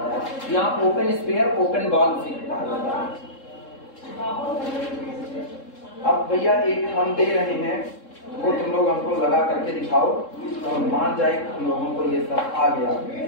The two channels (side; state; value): right; late; 3.7 ms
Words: है। यहाँ ओपन स्फीयर, ओपन बॉल सीखता है। अब भैया एक हम दे रहे हैं, वो तुम लोग हमको लगा करके दिखाओ तो मान जाए तुम लोगों को ये सब आ गया।